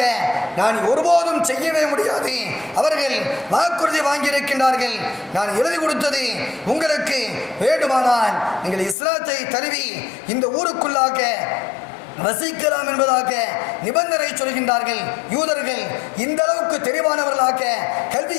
நான் ஒருபோதும் செய்யவே முடியாது. அவர்கள் வாக்குறுதி வாங்கியிருக்கின்றார்கள், நான் எழுதி கொடுத்தது உங்களுக்கு வேண்டுமானால் நீங்கள் இஸ்லாத்தை தழுவி இந்த ஊருக்குள்ளாக வசிக்கலாம் என்பதாக நிபந்தனை சொல்கின்றார்கள். யூதர்கள் இந்த அளவுக்கு தெளிவானவர்களாக,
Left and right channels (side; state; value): right; drops out; at 9.0 s